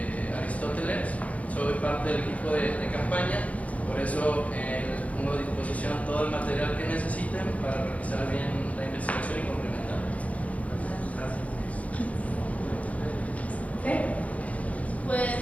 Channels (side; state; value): right; late; 0.067 ms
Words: Aristóteles, soy parte del equipo de campaña, por eso les pongo a disposición todo el material que necesiten para realizar bien la investigación y complementar. Gracias.